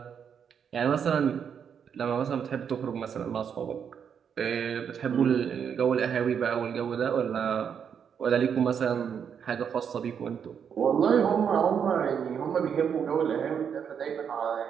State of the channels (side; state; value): left; quieter; 7.5 dB